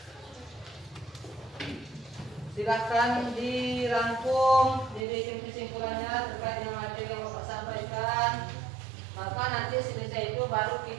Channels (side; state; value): left; drops out; at 5.1 s